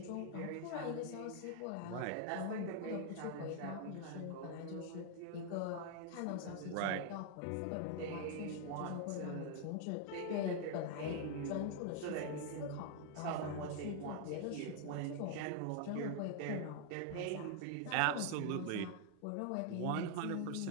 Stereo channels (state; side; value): different; both; correlation 0.00